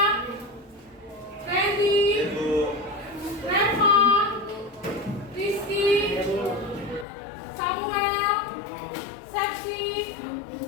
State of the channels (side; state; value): right; drops out; at 7.1 s